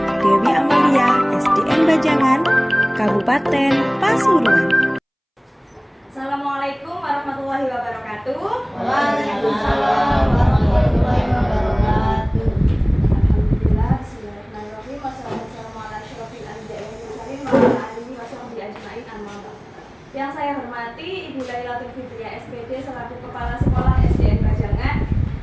Dewi Amalia, SDN Bajangan, Kabupaten Pasuruan. Assalamualaikum warahmatullahi wabarakatuh. Waalaikumsalam warahmatullahi wabarakatuh. Alhamdulillah, bismillahirrahmanirrahim. Wassalamualaikum warahmatullahi wabarakatuh. Yang saya hormati Ibu Lailatul Fitriah SPD selaku Kepala Sekolah SDN Bajangan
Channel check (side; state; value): both; identical; correlation 1.00